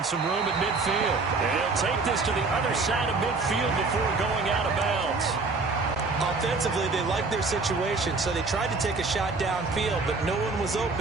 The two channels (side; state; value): left; quieter; 3.9 dB